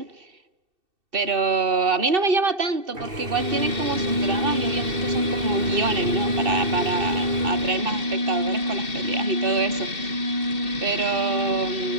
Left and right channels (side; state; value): left; late; 2.7 ms